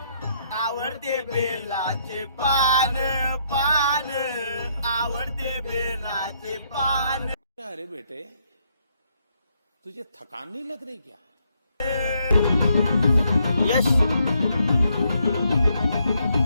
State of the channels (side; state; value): both; inverted; correlation -0.73